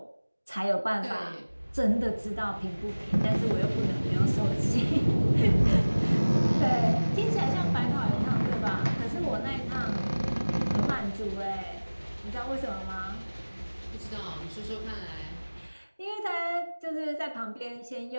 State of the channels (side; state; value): both; inverted; correlation -1.00